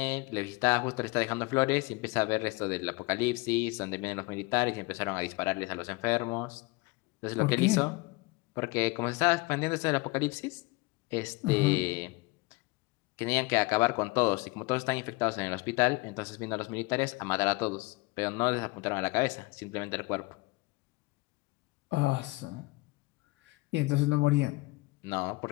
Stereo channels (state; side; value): quieter; right; 23.9 dB